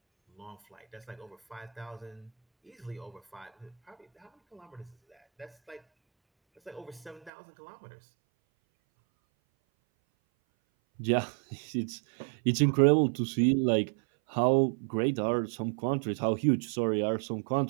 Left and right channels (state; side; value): drops out; left; at 7.3 s